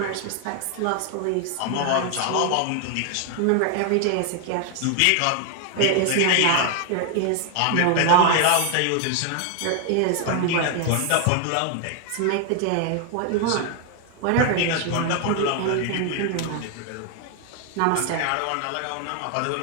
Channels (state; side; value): different; both; correlation 0.00